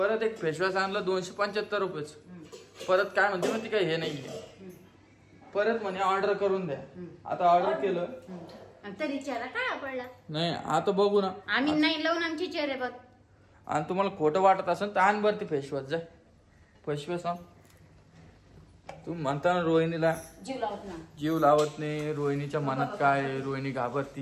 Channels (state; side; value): identical; both; correlation 1.00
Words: एक फेसवॉश आणलं 275 रुपयाचं. परत काय म्हणते मग ती काय हे नाहीये. परत म्हणे ऑर्डर करून द्या. आता ऑर्डर केलं तरी चेहरा काय पडला नाही. आता बघू ना आम्ही नाही लावून आमचे चेहरे बघ. आणि तुम्हाला खोटं वाटत असेल तर आण बरं ती फेसवॉश. जाय फेसवॉश आण. तुम्ही म्हणता ना रोहिणीला जीव लावत नाही. रोहिणीच्या मनात काय आहे? रोहिणी